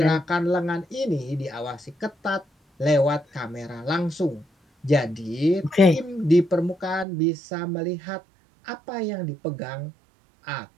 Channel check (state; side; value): drops out; left; at 7.1 s